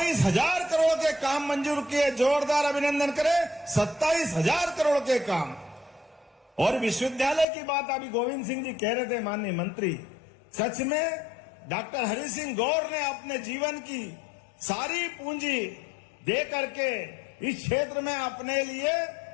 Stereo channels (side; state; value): right; drops out; at 7.5 s